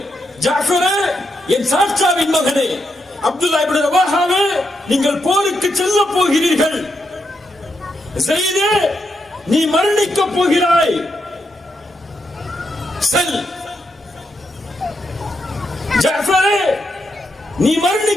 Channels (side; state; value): both; normal; correlation 0.82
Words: ஜாஃபரே, என் சாட்சாவின் மகனே, அப்துல்லா இப்னு ரவாஹாவே, நீங்கள் போருக்கு செல்ல போகிறீர்கள். ஸெய்தே, நீ மரணிக்க போகிறாய், செல். ஜாஃபரே, நீ